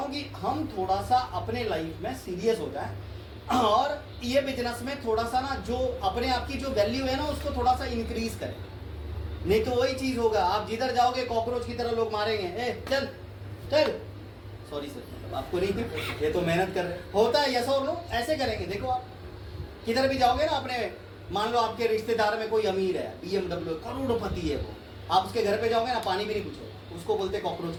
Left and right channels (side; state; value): both; identical; correlation 1.00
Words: हूँ कि हम थोड़ा सा अपने लाइफ में सीरियस हो जाए, और ये बिजनेस में थोड़ा सा ना जो अपने आप की जो वैल्यू है ना, उसको थोड़ा सा इंक्रीज करें। नहीं तो वही चीज होगा, आप जिधर जाओगे कॉकरोच की तरह लोग मारेंगे। ए चल चल, सॉरी सर। मतलब आपको नहीं, ये तो मेहनत कर रहे होता है। यस और नो ऐसे करेंगे। देखो आप किधर भी जाओगे ना अपने, मान लो आपके रिश्तेदार में कोई अमीर है, BMW करोड़पति है वो, आप उसके घर पे जाओगे ना पानी भी नहीं पूछोगे, उसको बोलते कॉकरोच